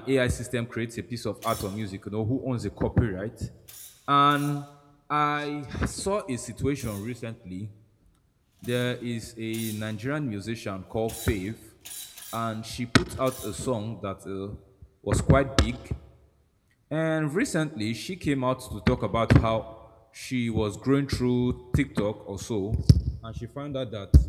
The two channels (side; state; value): both; identical; correlation 1.00